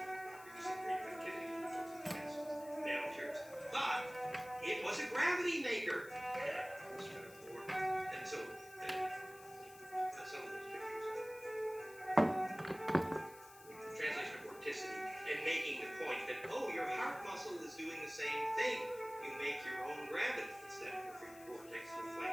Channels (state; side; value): noise; left; hiss, 19 dB below the sound